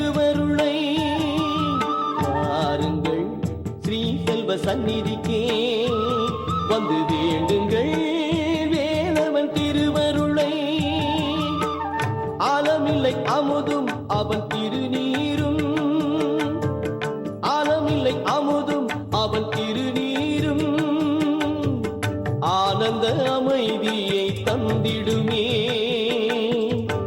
பாருங்கள் ஸ்ரீ செல்வ சந்நிதிக்கே வந்து வேண்டுங்கள் வேலவன் திருவருளை. ஆலமில்லை அமுதும் அவன் திருநீரும், ஆலமில்லை அமுதும் அவன் திருநீரும் ஆனந்த அமைதியை தந்திடுமே,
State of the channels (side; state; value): both; identical; correlation 1.00